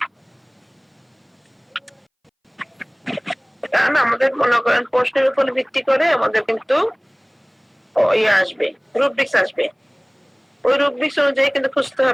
কারণ আমাদের মনে করেন প্রশ্নের উপর ভিত্তি করে আমাদের কিন্তু আসবে, রুব্রিক্স আসবে। ওই রুব্রিক্স অনুযায়ী কিন্তু খুঁজতে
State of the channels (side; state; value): both; identical; correlation 1.00